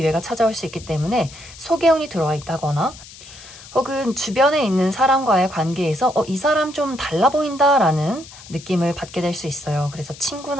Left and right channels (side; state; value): left; noise; hiss, 18 dB below the sound